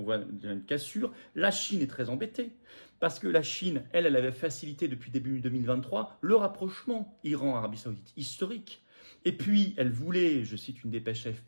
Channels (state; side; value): inverted; both; correlation -1.00